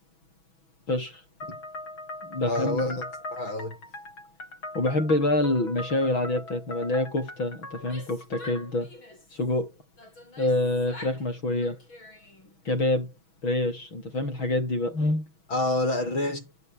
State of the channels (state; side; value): late; right; 6.2 ms